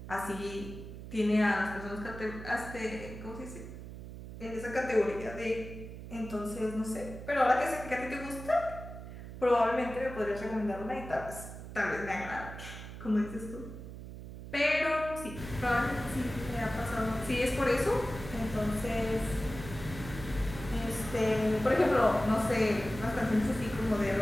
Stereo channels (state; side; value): noise; right; hum, 11 dB below the sound